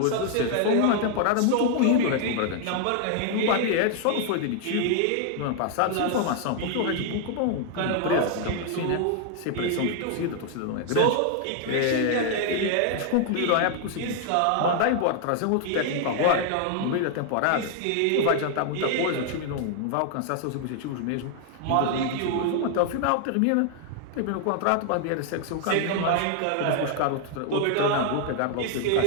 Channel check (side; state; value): both; different; correlation 0.00